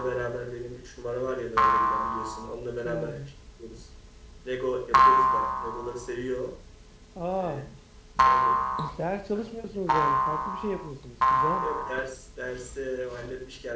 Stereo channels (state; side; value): identical; both; correlation 1.00